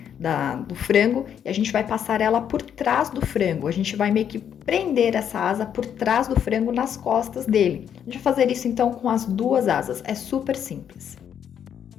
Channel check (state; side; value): quieter; right; 8.8 dB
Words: do frango e a gente vai passar ela por trás do frango. A gente vai meio que prender essa asa por trás do frango nas costas dele. A gente vai fazer isso então com as duas asas, é super simples.